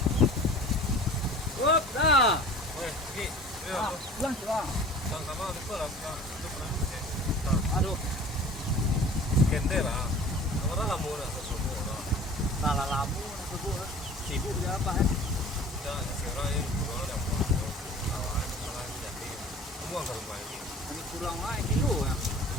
Wop, dah. Weh, pergi. Pulang, pulang. Sama-sama lupa lah. Aduh, Kender lah. Orang lama dah sesuatu lah. salah lamu nak sibuk dia apa Ya, si orang yang kurang yang buat kawan, orang yang jadi semua ke rumah ini. Ini kurang lah kilo ya.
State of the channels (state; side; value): normal; both; correlation 0.43